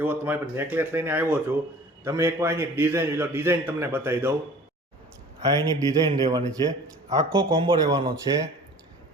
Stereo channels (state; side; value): normal; both; correlation 0.46